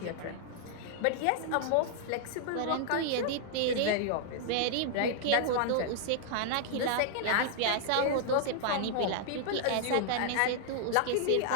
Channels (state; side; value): different; both; correlation 0.00